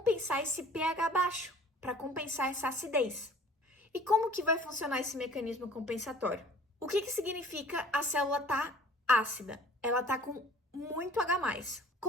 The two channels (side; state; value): both; normal; correlation 0.50